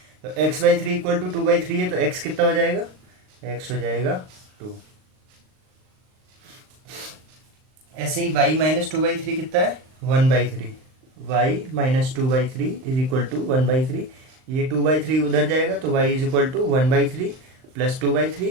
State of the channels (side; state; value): left; late; 38 ms